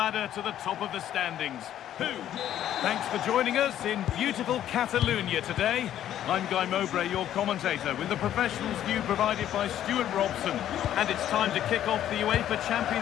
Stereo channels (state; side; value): quieter; right; 11.4 dB